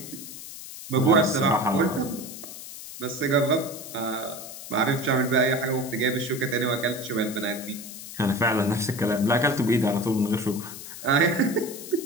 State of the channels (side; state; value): left; noise; hiss, 12 dB below the sound